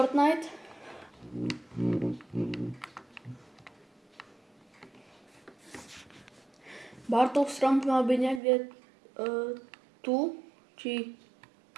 Bartov strom mal byť niekde tu, či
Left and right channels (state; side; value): drops out; left; at 8.4 s